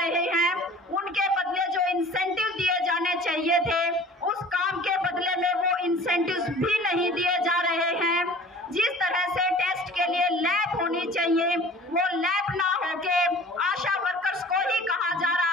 हैं, उनके बदले जो इंसेंटिव दिए जाने चाहिए थे उस काम के बदले में वो इंसेंटिव्स भी नहीं दिए जा रहे हैं। जिस तरह से टेस्ट के लिए लैब होनी चाहिए वो लैब ना होके आशा वर्कर्स को ही कहा जा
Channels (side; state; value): both; normal; correlation 0.46